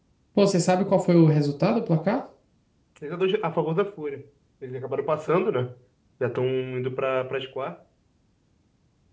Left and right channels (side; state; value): both; identical; correlation 1.00